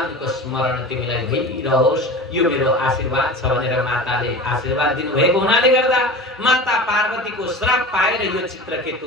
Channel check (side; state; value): both; normal; correlation 0.33